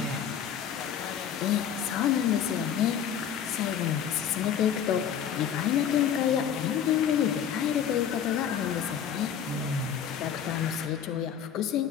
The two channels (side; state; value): right; quieter; 8.5 dB